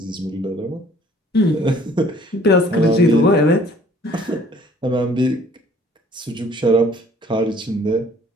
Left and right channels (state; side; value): normal; both; correlation 0.55